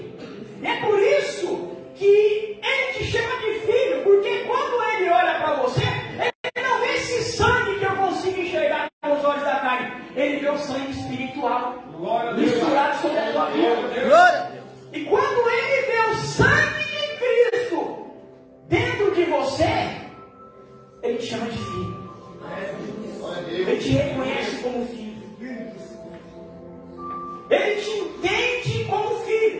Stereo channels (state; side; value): identical; both; correlation 1.00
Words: E é por isso que Ele te chama de filho, porque quando Ele olha para você, Ele não vê esse sangue que eu consigo enxergar com os olhos da carne, Ele vê o sangue espiritual misturado sobre a tua vida. E quando Ele vê o sangue de Cristo dentro de você, Ele te chama de filho. Ele te reconhece como filho. Ele te entende como